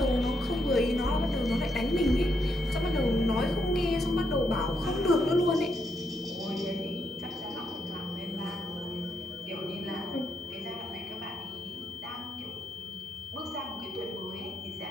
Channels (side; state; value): both; normal; correlation 0.78